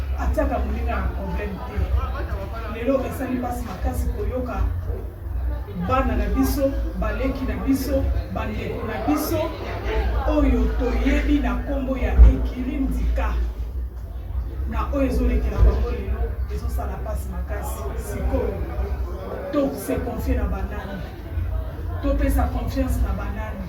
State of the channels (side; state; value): both; identical; correlation 1.00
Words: atiaka moninga na problème te. Lelo esa lui passe makasi koyoka bana na biso, baleki na biso, bandeko na biso, oyo toyebi na kombo ya Ekiri Ndika. Na oyo ezolekela bango lelo, ezosala pasi makasi, sikoyo. To se confier na banani. To pesa confiance na banani.